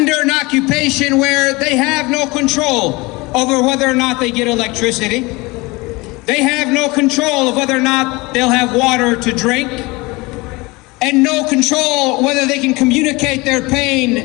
an occupation where they have no control over whether or not they get electricity. They have no control of whether or not they'll have water to drink, and no control whether they can communicate their pain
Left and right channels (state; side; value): quieter; right; 23.9 dB